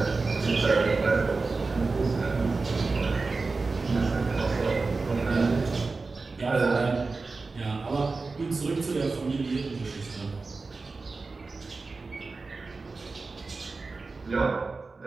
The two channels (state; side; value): quieter; left; 3.9 dB